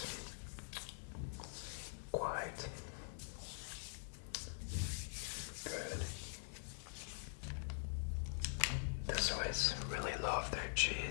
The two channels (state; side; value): silent; right; digital silence